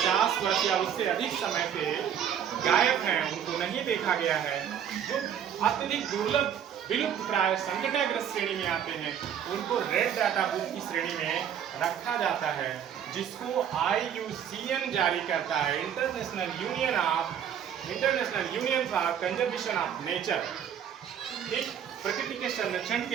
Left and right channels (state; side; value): quieter; left; 9.0 dB